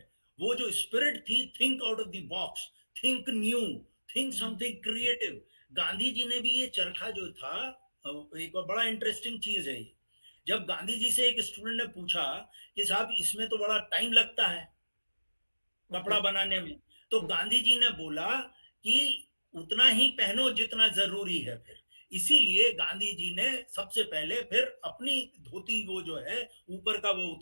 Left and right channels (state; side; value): inverted; both; correlation -1.00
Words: वो जो स्पिरिट थी, think out of the box, think new, think something creative, Gandhi ji ने भी ये चरखा जो था, एक बड़ा इंटरेस्टिंग चीज है ये, जब गांधी जी से एक स्टूडेंट ने पूछा कि साहब इसमें तो बड़ा टाइम लगता है कपड़ा बनाने में, तो गांधी जी ने बोला कि उतना ही पहनो जितना जरूरी है। फिर इसीलिए गांधी जी ने सबसे पहले फिर अपनी धोती, वो जो है ऊपर का, वो